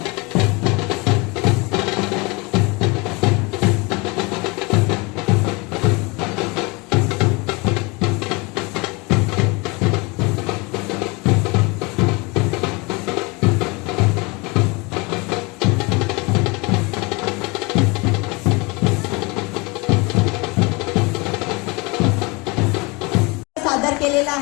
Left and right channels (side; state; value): right; quieter; 26.9 dB